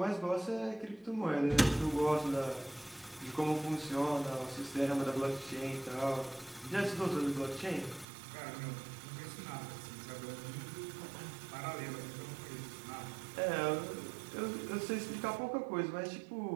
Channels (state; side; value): drops out; left; at 8.1 s